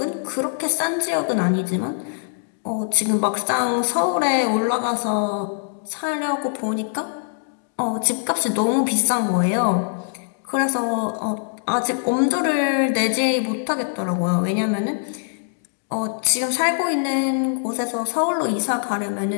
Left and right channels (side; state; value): right; silent; digital silence